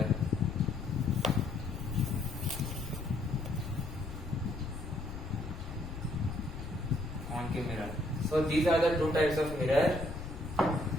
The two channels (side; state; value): left; noise; rumble, 9 dB below the sound